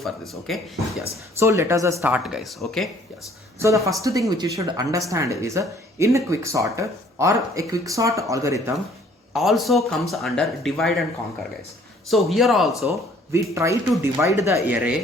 this. Okay, yes. So let us start, guys. Okay, yes. So the first thing which you should understand is in a quicksort or a quicksort algorithm also comes under divide and conquer, guys. So here also we try to divide the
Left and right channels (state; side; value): normal; both; correlation 0.58